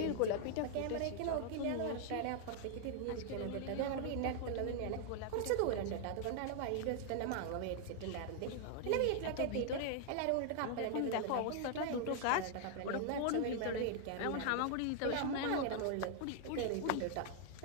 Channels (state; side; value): different; both; correlation 0.00